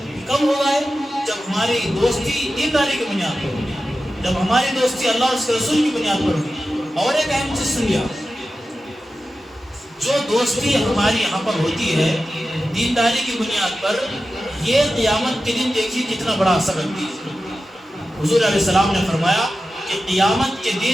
کب ہوگا ہے؟ جب ہماری دوستی دینداری کی بنیاد پر ہوگی، جب ہماری دوستی اللہ اور اس کے رسول کی بنیاد پر ہوگی۔ اور ایک اہم چیز سنیے، جو دوستی ہماری یہاں پر ہوتی ہے دینداری کی بنیاد پر، یہ قیامت کے دن دیکھیے کتنا بڑا اثر رکھتی ہے۔ حضور علیہ السلام نے فرمایا کہ قیامت کے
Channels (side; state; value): both; normal; correlation 0.93